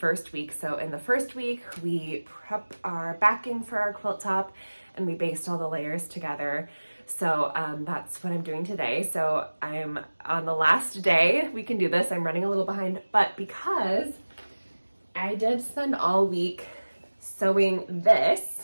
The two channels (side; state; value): both; inverted; correlation -1.00